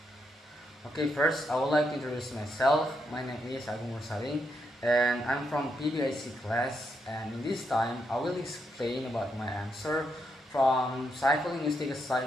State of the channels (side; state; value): both; normal; correlation 0.80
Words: Okay, first I would like to introduce myself. My name is Agung Mursaling and I'm from PBIC class, and in this time I will explain about my answer from psycholinguistic